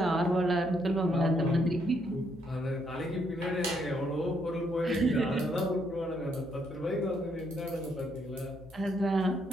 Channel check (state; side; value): normal; both; correlation 0.73